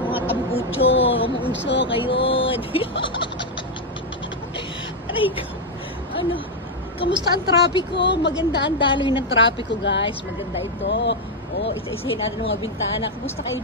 mga tambucho, mga uso, kayo. Aray ko. Ano, kamusta ang trapiko? Maganda ang daloy ng trapiko, guys. Maganda ito. O, isa-isahin natin ang mga bintana. Kumusta kayo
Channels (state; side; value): normal; both; correlation 0.02